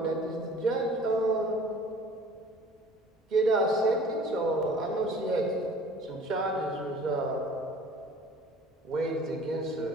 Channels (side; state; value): both; normal; correlation 0.48